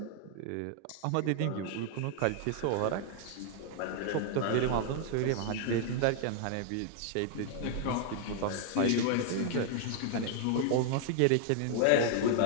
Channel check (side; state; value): both; different; correlation 0.00